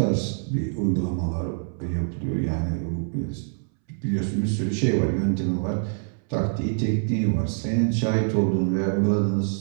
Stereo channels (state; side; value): silent; left; 62 dB below the other